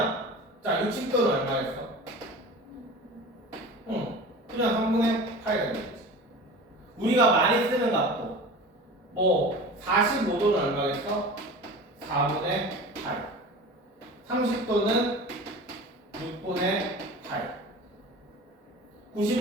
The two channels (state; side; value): normal; both; correlation 0.36